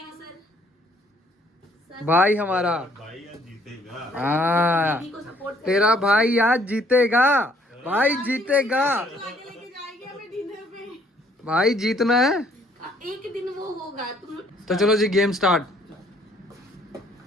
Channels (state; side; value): normal; both; correlation 0.63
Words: सर? भाई हमारा, भाई आज जीतेगा। हाँ दीदी को सपोर्ट तेरा भाई आज जीतेगा, भाई जीतेगा, लेके जाएंगे हमें डिनर पे। भाई जीतना है। एक दिन वो होगा तुम। तो चलो जी गेम स्टार्ट।